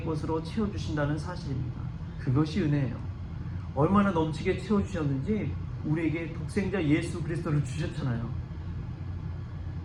것으로 채워주신다는 사실입니다. 그것이 은혜예요. 얼마나 넘치게 채워주셨는지 우리에게 독생자 예수 그리스도를 주셨잖아요.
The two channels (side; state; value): both; identical; correlation 1.00